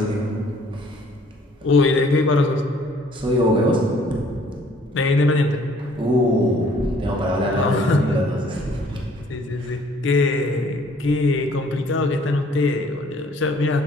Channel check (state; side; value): normal; both; correlation 0.59